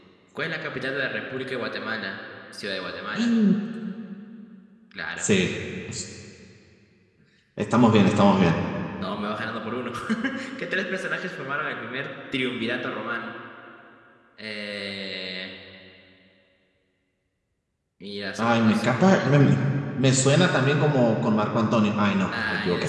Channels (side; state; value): both; identical; correlation 1.00